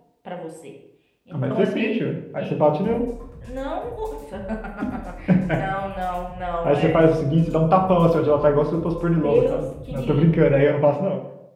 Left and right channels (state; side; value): identical; both; correlation 1.00